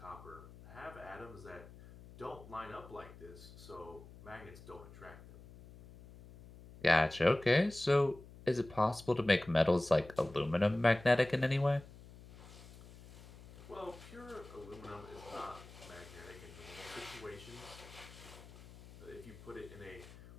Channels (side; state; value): left; noise; hum, 18 dB below the sound